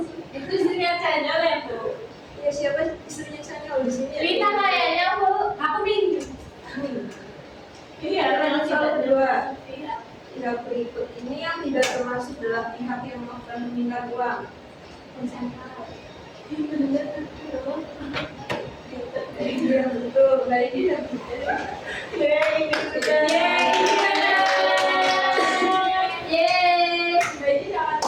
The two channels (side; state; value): both; identical; correlation 1.00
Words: Itu istrinya channel ya Bu? Ya siapa istrinya Chanyeol di sini? Rita kayaknya Bu. Aku nih. Iya, Lanjut soal kedua. Pihak berikut ini yang tidak termasuk dalam pihak yang akan meminta uang. Iya betul, baik ya.